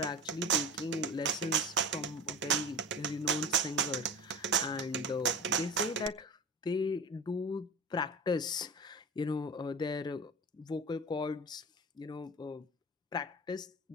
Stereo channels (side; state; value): both; normal; correlation 0.32